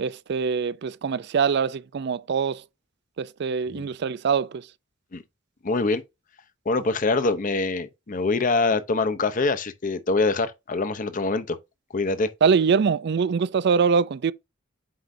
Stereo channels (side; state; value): both; normal; correlation -0.03